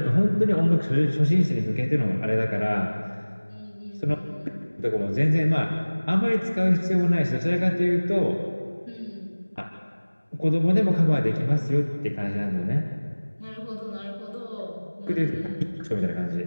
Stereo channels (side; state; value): both; inverted; correlation -1.00